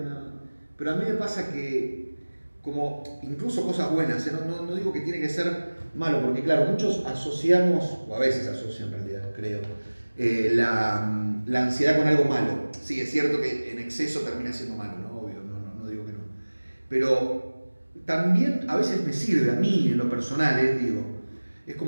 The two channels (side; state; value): both; inverted; correlation -1.00